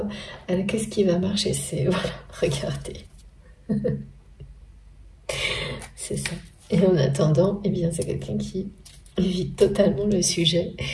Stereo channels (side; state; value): both; identical; correlation 1.00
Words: Qu'est-ce qui va marcher? C'est... Voilà, regardez. C'est ça. Et en attendant, eh bien, c'est quelqu'un qui évite totalement le sujet